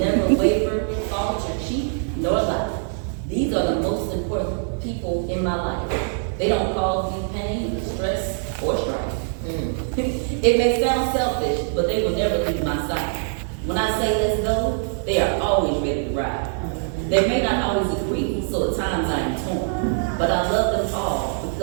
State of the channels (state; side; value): silent; left; 60 dB below the other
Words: waver, falter, cheat, nor lie. These are the most important people in my life. They don't cause me pain, stress, or strife. It may sound selfish, but they will never leave my side. When I say let's go, they are always ready to ride. They may not always agree, so at times I am torn. But I love them all